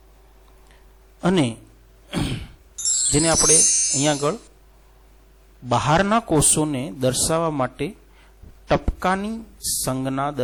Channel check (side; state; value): both; identical; correlation 1.00